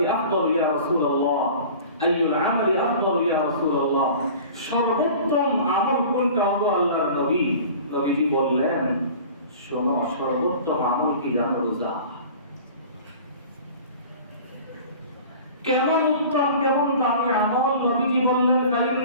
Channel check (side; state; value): both; inverted; correlation -0.42